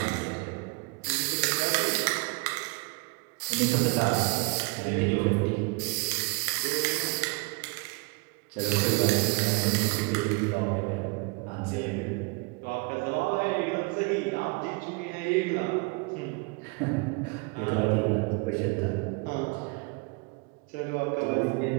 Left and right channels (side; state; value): left; quieter; 28.4 dB